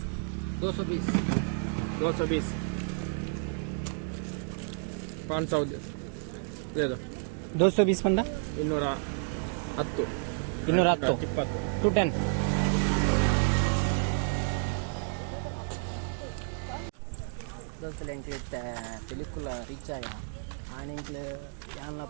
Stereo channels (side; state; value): left; silent; 57 dB below the other